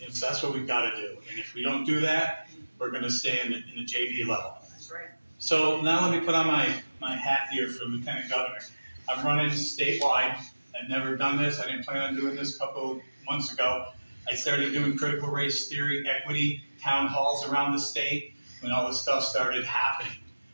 that's what we've got to do. And if we don't do that, we're going to stay in the JV level. That's right. So now let me put on my hat here for Lieutenant Governor. I'm running statewide. I've never done this. I didn't plan on doing this a couple of months ago. I started doing critical race theory, equity, town halls around the state when all this stuff started happening.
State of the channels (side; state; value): both; inverted; correlation -1.00